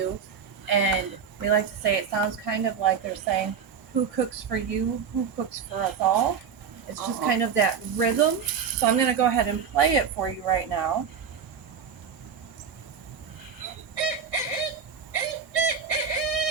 and we like to say it sounds kind of like they're saying, "Who cooks for you? Who cooks for us all?" It's just kind of that rhythm. So I'm going to go ahead and play it for you right now.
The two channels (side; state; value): left; quieter; 6.7 dB